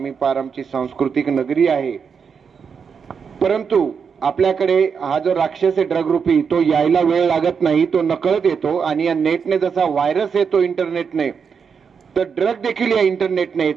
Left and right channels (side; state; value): left; quieter; 6.3 dB